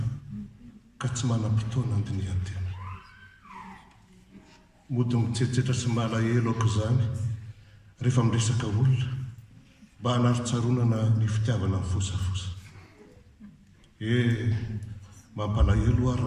ka tsy manam-potoana andinihan-tena mody mitsetsetra sy malahelo aoko izany rehefa miresaka olona mba hanaritsaronana ny fitiavana ny fosafosa mampalahelo a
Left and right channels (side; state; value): both; identical; correlation 1.00